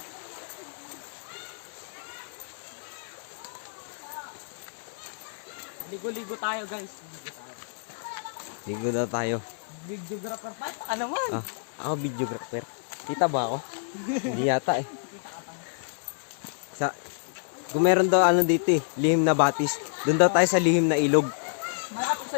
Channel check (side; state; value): right; silent; digital silence